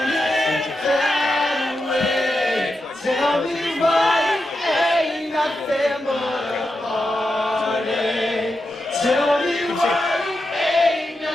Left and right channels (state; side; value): normal; both; correlation 0.88